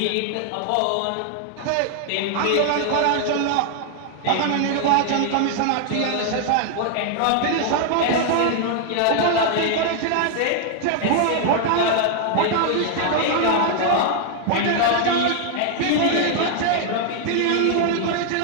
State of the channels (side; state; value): both; different; correlation 0.00